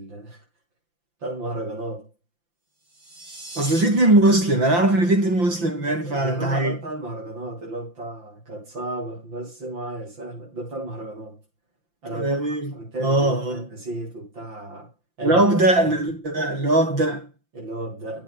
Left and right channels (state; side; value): late; left; 5.8 ms